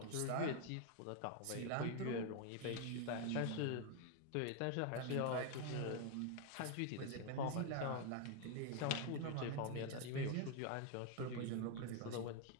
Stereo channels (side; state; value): both; different; correlation 0.01